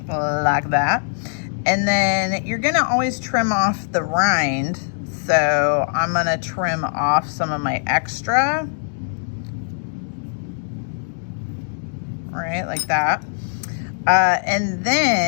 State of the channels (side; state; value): right; silent; digital silence